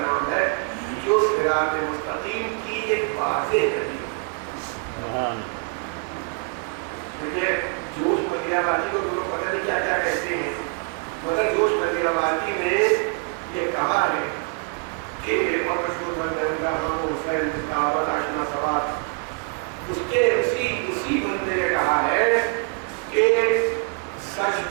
ہے جو صراط مستقیم کی ایک واضح دلیل ہے۔ دیکھیے جوش ملیح آبادی کو تو لوگ پتہ نہیں کیا کیا کہتے ہیں، مگر جوش ملیح آبادی نے یہ کہا ہے کہ اور مشہور بندہ ہم حسین دعوت آشنا سوات، اس کے اسی بندے نے کہا ہے کہ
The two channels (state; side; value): quieter; left; 39.1 dB